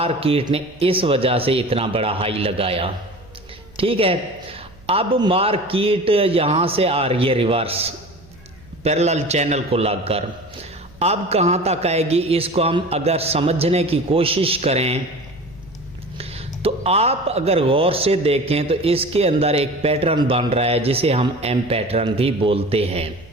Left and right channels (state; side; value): noise; right; hum, 25 dB below the sound